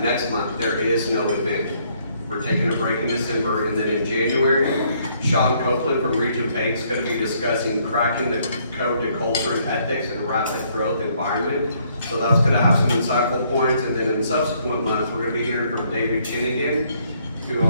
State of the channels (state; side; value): inverted; both; correlation -0.68